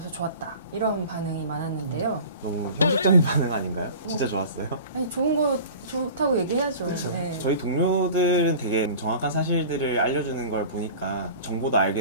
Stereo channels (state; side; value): inverted; both; correlation -0.40